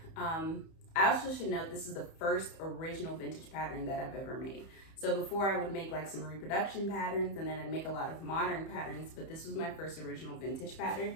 I also should note this is the first original vintage pattern that I've ever made. So before I would make like some reproduction patterns, and then I'd make a lot of modern patterns, but this was my first original vintage pattern.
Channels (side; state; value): right; late; 31 ms